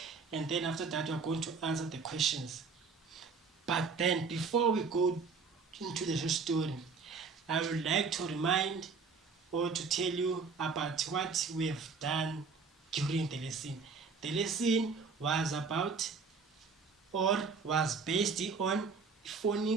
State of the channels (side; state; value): left; quieter; 4.9 dB